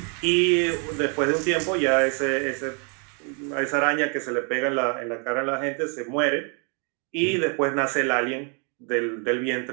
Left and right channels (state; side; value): quieter; left; 37.9 dB